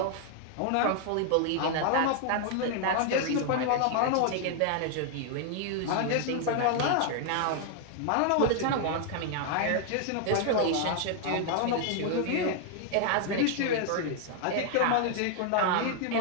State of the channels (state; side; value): different; both; correlation 0.00